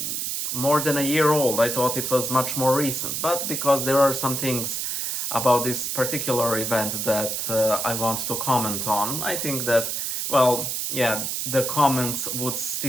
more than a year old. I thought it was much more recent, but because there are some things about this particular event that I want to comment on, I think that, well, yeah, the comments would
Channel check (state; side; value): noise; right; hiss, 2 dB below the sound